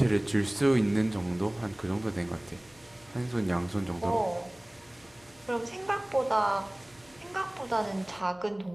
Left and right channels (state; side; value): noise; left; hum, 28 dB below the sound